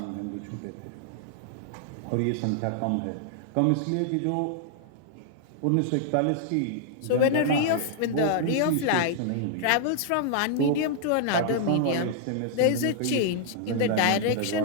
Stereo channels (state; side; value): different; both; correlation -0.01